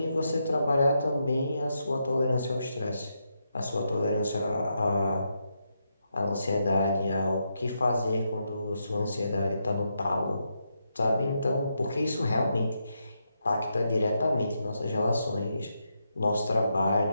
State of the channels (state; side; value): inverted; both; correlation -0.83